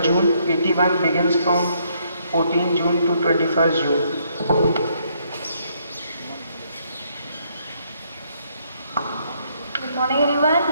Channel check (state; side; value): inverted; both; correlation -0.71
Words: June. PT1 begins from 14 June to 21st June. Good morning everyone.